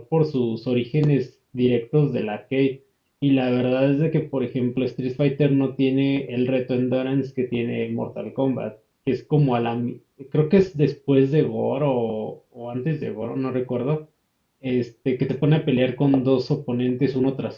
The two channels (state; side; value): identical; both; correlation 1.00